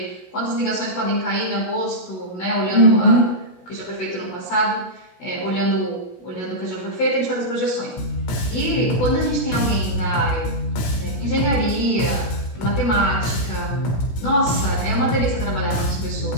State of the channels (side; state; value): right; late; 16 ms